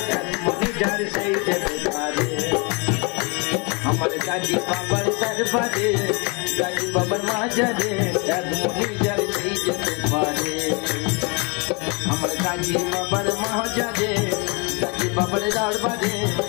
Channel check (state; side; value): quieter; right; 31.4 dB